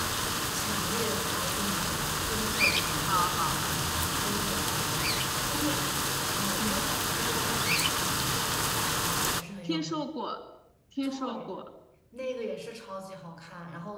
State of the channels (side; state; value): both; identical; correlation 1.00